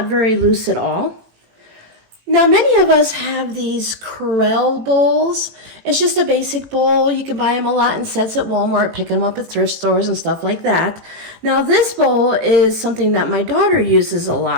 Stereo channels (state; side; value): late; left; 18 ms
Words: very loose at all. Now, many of us have these Corelle bowls. It's just a basic bowl. You can buy them a lot in sets at Walmart, picking them up at thrift stores and stuff like that. Now, this bowl is something that my daughter uses a